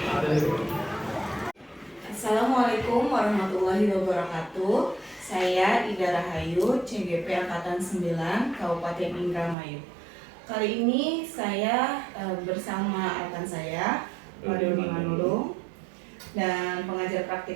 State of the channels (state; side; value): drops out; left; at 9.6 s